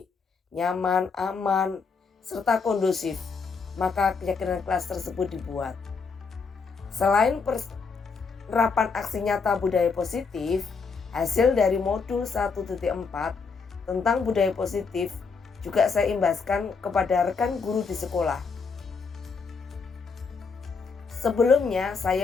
nyaman, aman, serta kondusif, maka keyakinan kelas tersebut dibuat. Selain penerapan aksi nyata budaya positif, hasil dari modul 1.4 tentang budaya positif juga saya imbaskan kepada rekan guru di sekolah. Sebelumnya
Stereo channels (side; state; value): right; quieter; 5.0 dB